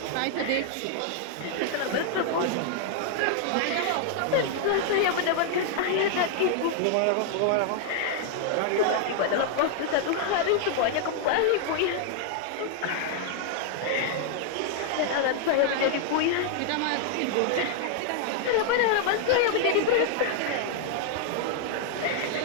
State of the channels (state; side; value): different; both; correlation 0.00